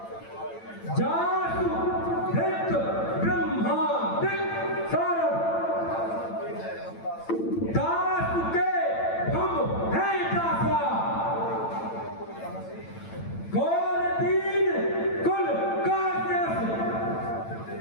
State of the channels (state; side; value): late; right; 8.9 ms